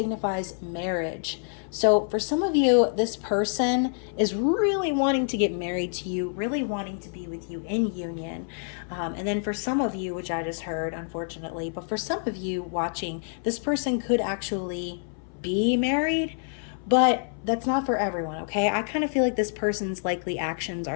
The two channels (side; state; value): right; silent; 60 dB below the other